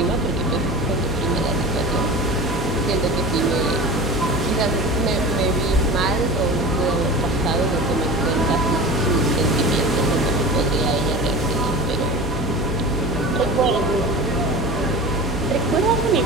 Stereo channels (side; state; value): both; normal; correlation 0.34